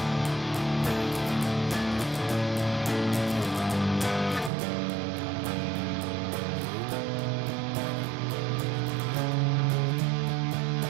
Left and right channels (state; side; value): drops out; left; at 4.5 s